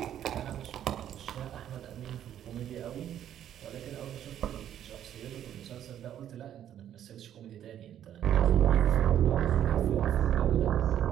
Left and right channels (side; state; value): left; quieter; 10.6 dB